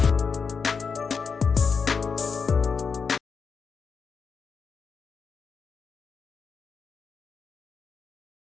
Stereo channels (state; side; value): quieter; right; 5.6 dB